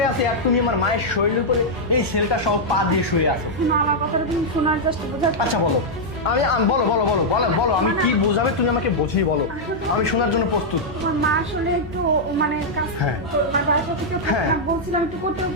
আছে আর তুমি আমার মায়ের শরীরের উপরে এই ছেলেটা সব পা দিয়ে শুয়ে আছো। শোনো, আমার কথাটা তুমি শোনার চেষ্টা বোঝার। আচ্ছা বলো, বলো বলো বলো বলো বলো, আমি কি বোঝাবে তুমি আমাকে বুঝিয়ে বলো, আমি শোনার জন্য প্রস্তুত। তোমার মা আসলে একটু মানে কাজ হ্যাঁ। বাসা থেকে হ্যাঁ। বলছিলাম একটু করতে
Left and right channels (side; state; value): both; normal; correlation -0.05